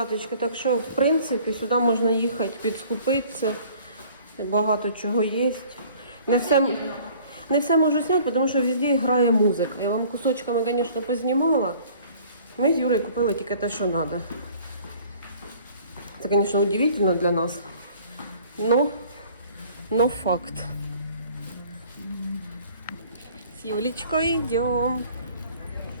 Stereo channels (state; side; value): inverted; both; correlation -0.52